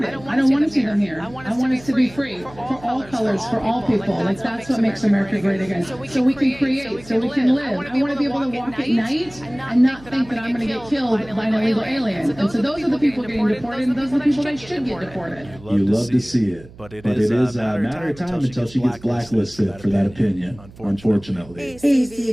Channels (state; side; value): noise; right; hum, 21 dB below the sound